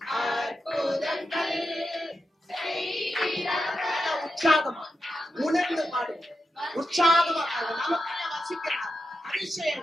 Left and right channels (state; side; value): normal; both; correlation 0.88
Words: அற்புதங்கள் செய்கிறவர். உற்சாகமா உணர்ந்து பாடுங்க. உற்சாகமா நமக்கு வசிக்கிறார்.